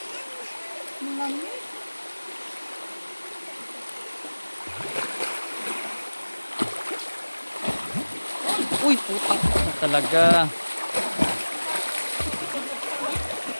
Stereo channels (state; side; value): inverted; both; correlation -1.00